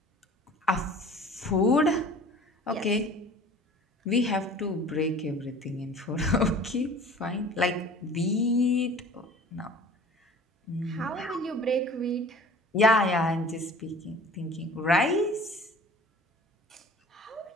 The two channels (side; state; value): both; normal; correlation 0.45